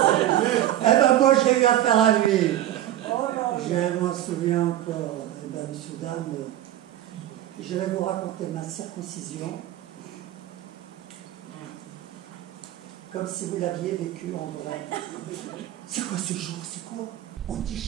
Eh ben, moi, j'ai eu affaire à lui. Je m'en souviens encore. Eh ben, monsieur, dame, je vais vous raconter ma circoncision comme si vous l'aviez vécu en vrai. C'est quoi ce jour? C'est quoi? On dit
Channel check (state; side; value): quieter; left; 12.9 dB